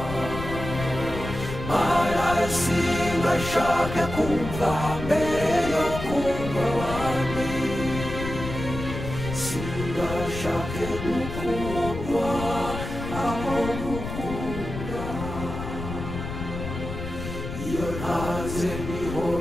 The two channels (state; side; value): noise; left; rumble, 7 dB below the sound